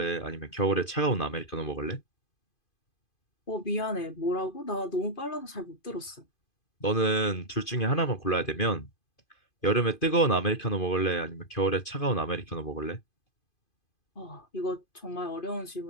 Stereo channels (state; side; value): late; right; 2.5 ms